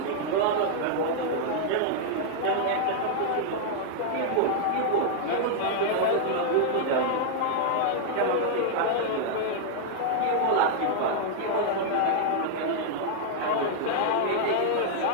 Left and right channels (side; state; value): both; different; correlation -0.01